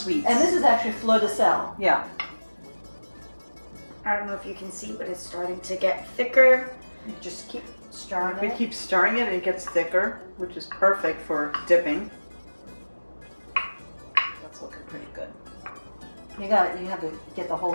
And this is actually fleur de sel. Yeah. I don't know if you can see, but it's starting to get thicker. Just keep stirring We it. keep stirring it and it gets thicker, which is perfect for dipping. That's looking pretty good. You have to get the whole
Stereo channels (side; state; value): both; inverted; correlation -1.00